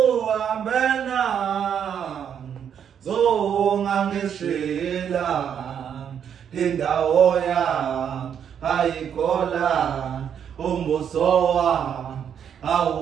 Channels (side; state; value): left; quieter; 8.4 dB